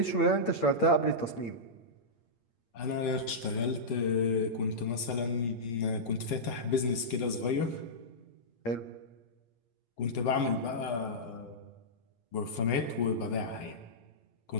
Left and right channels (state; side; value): late; right; 8.7 ms